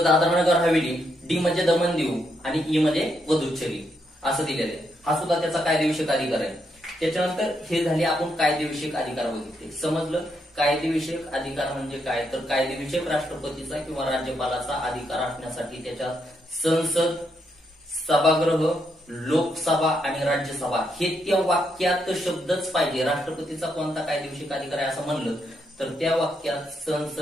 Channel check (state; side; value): normal; both; correlation 0.78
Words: दादरा नगर हवेली, डी म्हणजे दमन दीव आणि ई म्हणजे पुदुच्चेरी असं दिलेलं आहे. हा सुद्धा त्याचा कायदेविषयक अधिकार आहे. त्याच्यानंतर हे झाले आपण कायदेविषयक अधिकार बघितले. समजलं कायदेविषयक अधिकार म्हणजे काय, तर कायदेविषयक राष्ट्रपतीचा किंवा राज्यपालाचा अधिकार असण्यासाठी त्याच्या संसद, सभागृह, लोकसभा आणि राज्यसभा हे त्या वाक्यात शब्दच पाहिजे. राष्ट्रपतीचा कोणता कायदेविषयक अधिकार आहे असं म्हणलं तर त्या वाक्यात